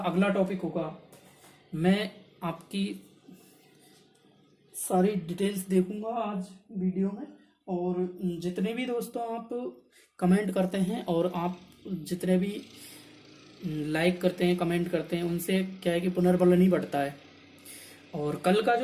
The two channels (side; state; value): both; identical; correlation 1.00